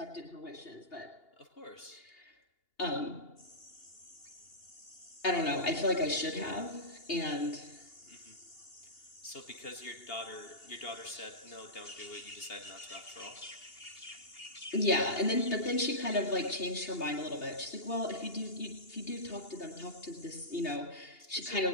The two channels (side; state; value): right; late; 2.8 ms